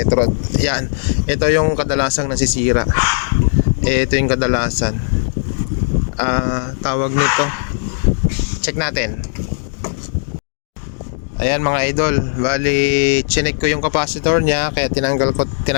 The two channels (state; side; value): silent; right; digital silence